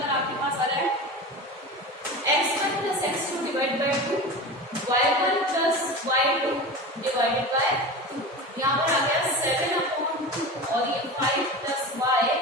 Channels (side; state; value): both; normal; correlation 0.29